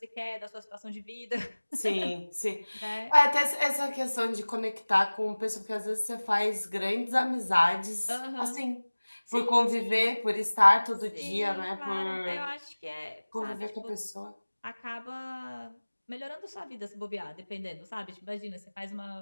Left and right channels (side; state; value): both; inverted; correlation -1.00